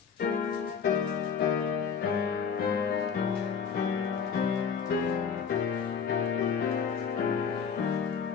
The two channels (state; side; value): quieter; right; 6.5 dB